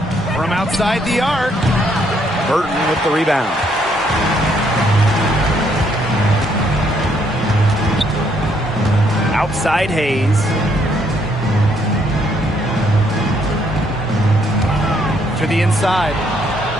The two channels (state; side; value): normal; both; correlation 0.70